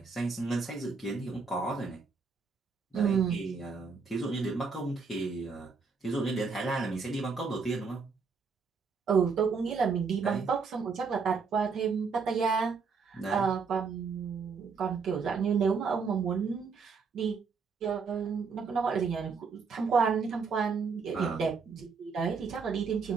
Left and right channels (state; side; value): quieter; left; 5.1 dB